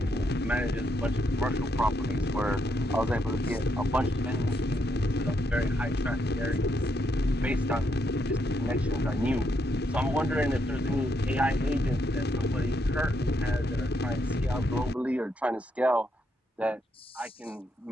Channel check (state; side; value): normal; both; correlation 0.77